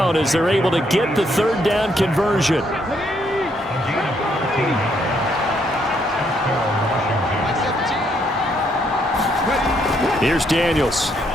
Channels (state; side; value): normal; both; correlation 0.72